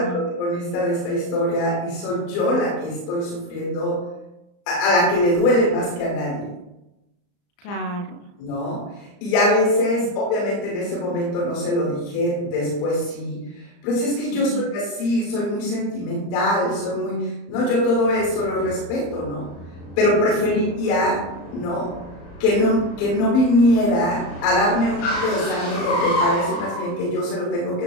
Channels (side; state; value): right; late; 35 ms